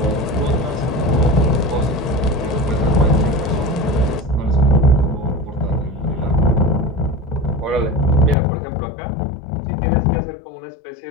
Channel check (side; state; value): right; drops out; at 8.3 s